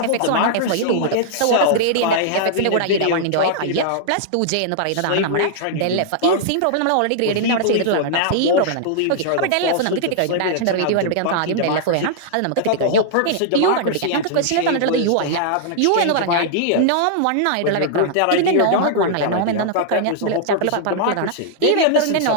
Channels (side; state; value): both; different; correlation -0.01